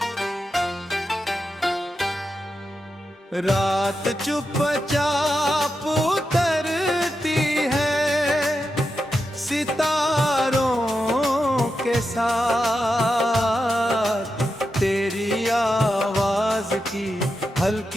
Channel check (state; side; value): normal; both; correlation 0.88